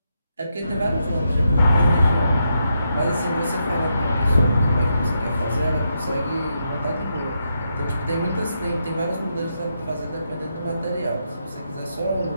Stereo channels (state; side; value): inverted; both; correlation -0.82